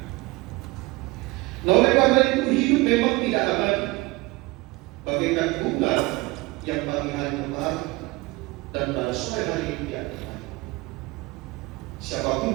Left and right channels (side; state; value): left; quieter; 22.4 dB